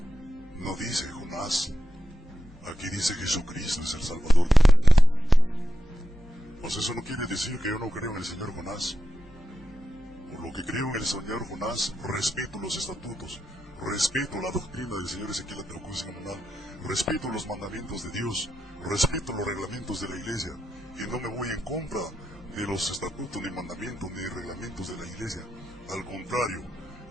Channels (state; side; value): normal; both; correlation 0.89